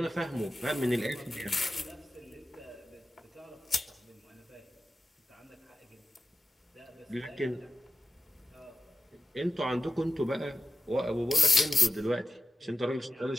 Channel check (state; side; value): normal; both; correlation 0.94